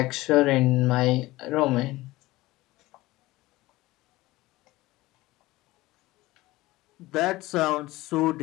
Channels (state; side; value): quieter; right; 18.9 dB